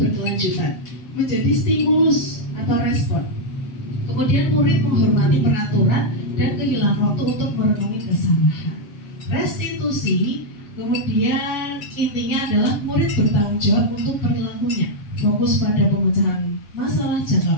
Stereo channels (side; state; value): right; late; 7.4 ms